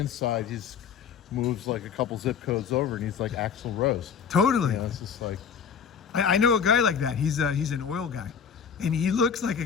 he's moves like a couple zip codes over and he's like Axl Rose. Totally. It's just like, I know a guy like that. He's an oil guy, and he looks like a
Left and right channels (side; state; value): right; quieter; 7.0 dB